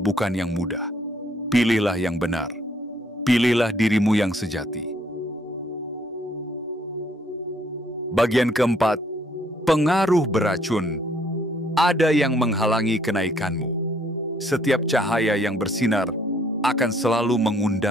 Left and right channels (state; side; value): normal; both; correlation 0.65